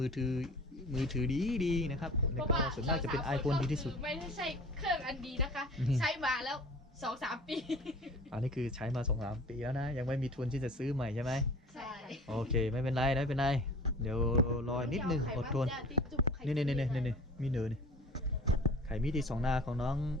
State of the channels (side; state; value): both; normal; correlation 0.43